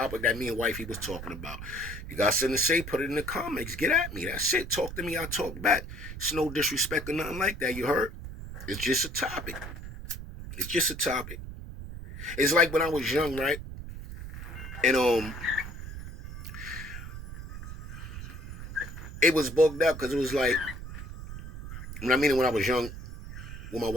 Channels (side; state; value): right; noise; rumble, 10 dB below the sound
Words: that me and wifey was talking about. You got something to say, put it in the comments. Get at me. That's it. Talk to me, I talk back. It's no disrespect or nothing like that, you heard? It's just a topic. It's just a topic. It's like when I was young, right? And it was bugged up because it was like, when I was young with my